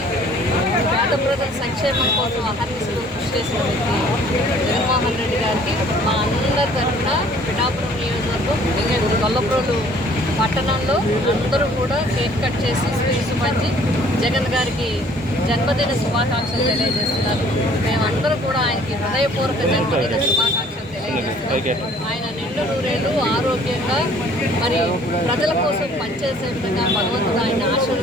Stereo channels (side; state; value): both; normal; correlation 0.56